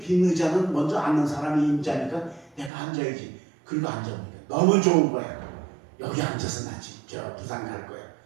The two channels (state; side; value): drops out; left; at 2.7 s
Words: 의자는 먼저 앉는 사람이 임자니까 내가 앉아야지. 그리고 앉아보니까 너무 좋은 거야. 여기 앉아서 나 지금 저 부산 갈 거야.